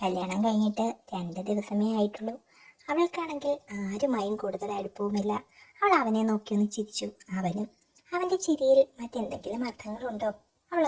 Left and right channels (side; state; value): both; identical; correlation 1.00